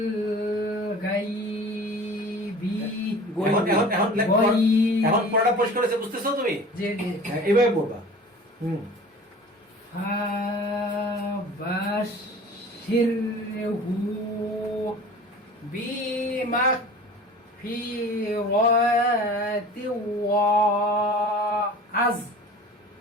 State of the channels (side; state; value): both; normal; correlation 0.42